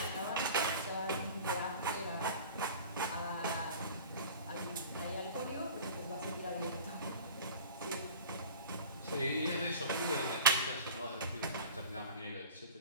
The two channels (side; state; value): both; inverted; correlation -0.41